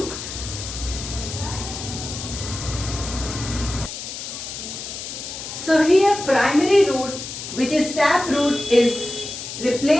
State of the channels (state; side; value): noise; left; hiss, 8 dB below the sound